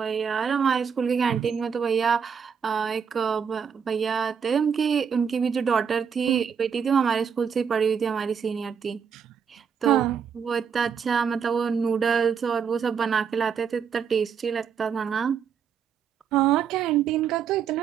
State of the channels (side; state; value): left; quieter; 7.0 dB